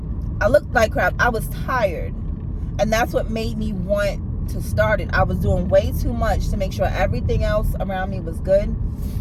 I looked like crap. I was tired. And that's what made me want to start it. I was doing way too much to make sure everything else around me was good.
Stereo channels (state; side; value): identical; both; correlation 1.00